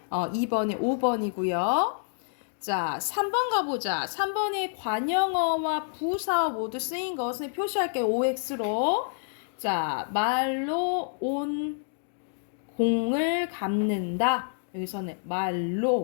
2번에 5번이고요. 자, 3번 가보자. 3번에 관영어와 부사어 모두 쓰인 것을 표시할게요. OX로. 자, 말로 온 공을 갚는다. 여기서는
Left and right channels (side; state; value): right; silent; digital silence